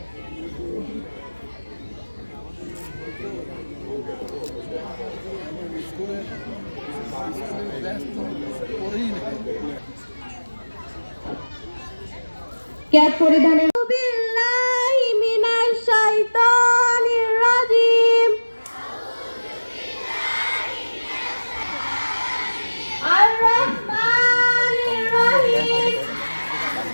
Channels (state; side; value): inverted; both; correlation -1.00